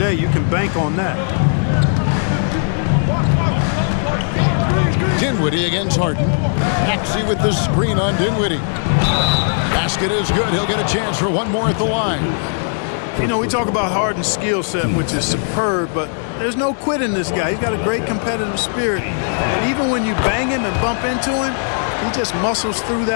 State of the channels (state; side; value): silent; right; digital silence